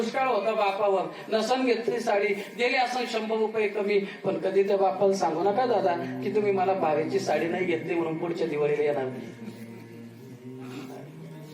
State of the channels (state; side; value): identical; both; correlation 1.00